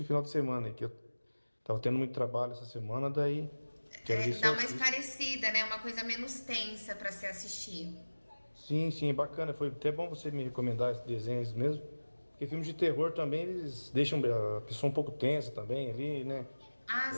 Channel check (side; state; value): both; inverted; correlation -1.00